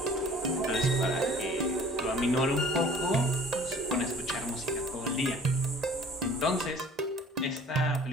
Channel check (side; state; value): both; normal; correlation 0.49